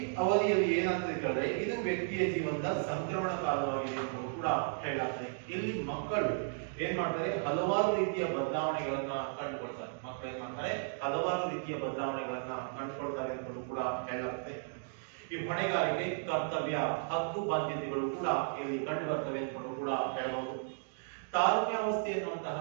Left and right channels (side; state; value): left; silent; digital silence